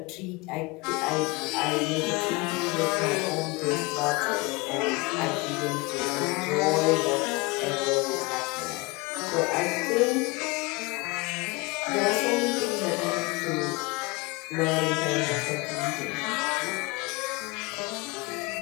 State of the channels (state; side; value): quieter; right; 25.5 dB